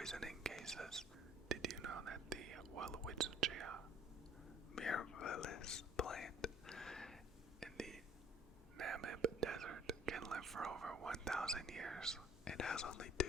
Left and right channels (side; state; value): both; normal; correlation 0.56